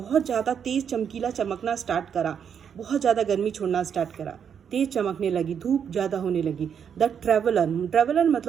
ज़्यादा तेज चमकीला चमकना स्टार्ट करा, बहुत ज़्यादा गर्मी छोड़ना स्टार्ट करा, तेज चमकने लगी, धूप ज़्यादा होने लगी। द ट्रेवलर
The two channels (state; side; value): quieter; left; 7.7 dB